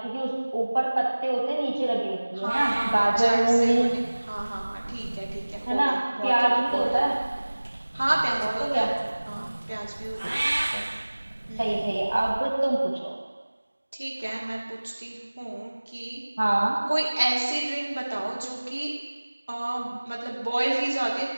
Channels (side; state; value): both; inverted; correlation -1.00